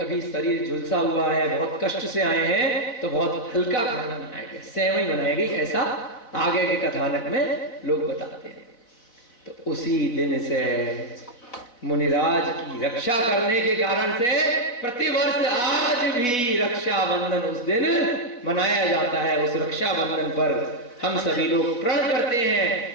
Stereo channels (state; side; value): late; right; 4.1 ms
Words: शरीर झुलसा हुआ है, बहुत कष्ट से आए हैं, तो बहुत हल्का खाना बनाया गया, सेवई बनाई गई, ऐसा आगे के कथानक में लोग बताते हैं। तो उसी दिन से मुनिराज की रक्षा करने के कारण से प्रतिवर्ष आज भी रक्षाबंधन उस दिन मनाया जाता है। उस रक्षाबंधन पर हम सभी लोग प्रण करते